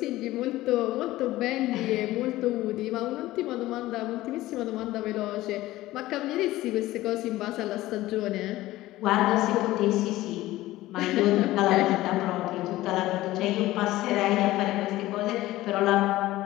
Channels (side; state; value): right; quieter; 16.7 dB